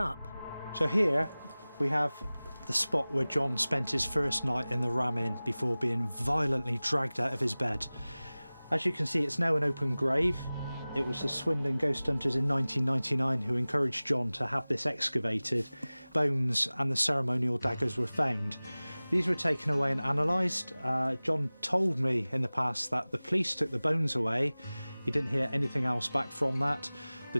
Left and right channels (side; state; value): both; inverted; correlation -0.99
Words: So here we have the spot where John spent his first night in the Ram Inn before being violently dragged out of his bed. As you can see, it's now an open grave. It was the Swindon ghost hunters in 1999 who encouraged John to have this excavated. Bones and the ceremonial daggers were found. These were taken away and analysed. John told me in the past that the police took the bones away. He didn't hear anything else back from that.